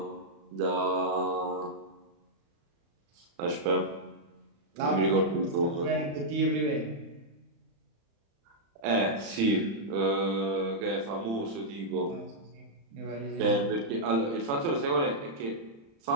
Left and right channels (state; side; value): late; left; 35 ms